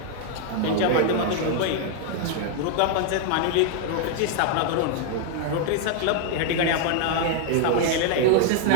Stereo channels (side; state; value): both; different; correlation 0.00